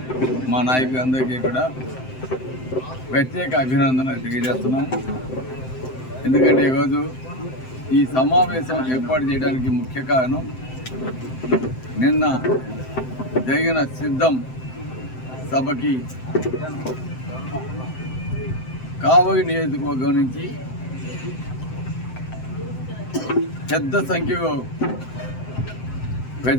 మా నాయకులందరికీ కూడా ప్రత్యేక అభినందనలు తెలియజేస్తున్నాను. ఎందుకంటే ఈరోజు ఈ సమావేశం ఏర్పాటు చేయడానికి ముఖ్య కారణం నిన్న జరిగిన సిద్ధం సభకి కావలి నియోజకవర్గం నుంచి పెద్ద సంఖ్యలో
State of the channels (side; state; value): right; late; 7.8 ms